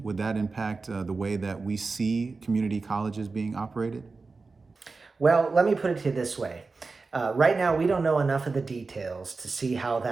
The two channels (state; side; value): quieter; left; 4.1 dB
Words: Would that impact the way that we see community colleges being operated? Well, let me put it to you this way. Right now, we don't know enough of the details to see how